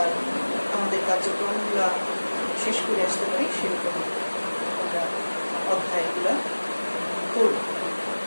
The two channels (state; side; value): inverted; both; correlation -1.00